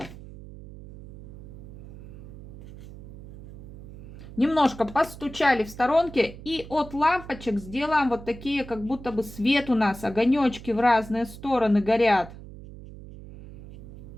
Немножко постучали в сторонке. И от лампочек сделаем вот такие, как будто бы свет у нас, огонечки в разные стороны горят.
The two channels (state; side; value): noise; right; hum, 15 dB below the sound